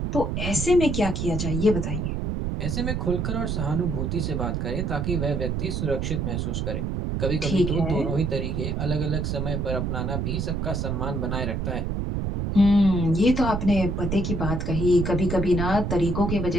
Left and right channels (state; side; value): noise; right; rumble, 1 dB below the sound